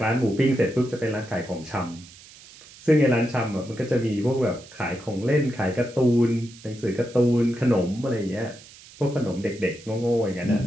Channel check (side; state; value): right; noise; hiss, 21 dB below the sound